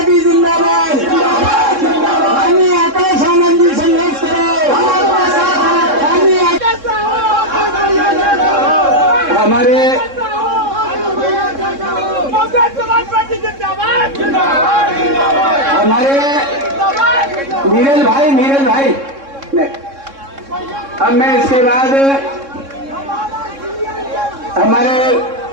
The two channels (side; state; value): left; late; 3.6 ms